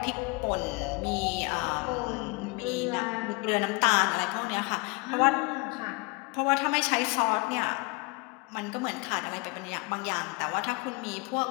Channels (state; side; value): quieter; right; 27.4 dB